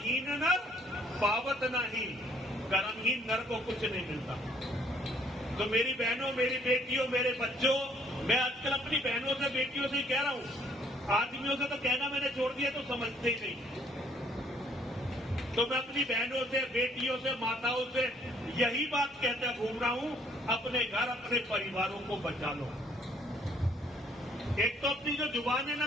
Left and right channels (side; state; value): both; normal; correlation 0.63